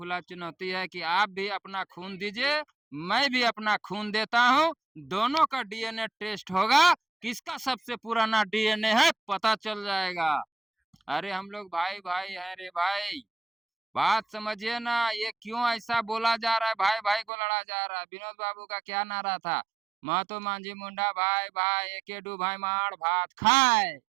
चुनौती है कि आप भी अपना खून दीजिए, मैं भी अपना खून देता हूँ। दोनों का डीएनए टेस्ट होगा, किसका सबसे पुराना डीएनए है पता चल जाएगा। अरे हम लोग भाई भाई हैं रे भाई, बात समझिए ना। ये क्यों ऐसा बोला जा रहा है? भाई भाई को लड़ा जा रहा है। विनोद बाबू का क्या नारा था? महतो मांझी मुंडा भाई भाई, एके डू भाई मार भात खाए।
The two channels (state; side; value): drops out; left; at 17.2 s